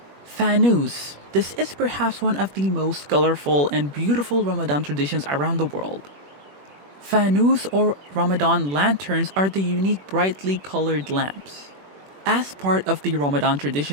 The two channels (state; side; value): late; left; 21 ms